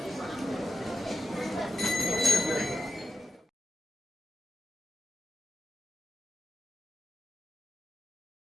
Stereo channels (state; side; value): normal; both; correlation 0.89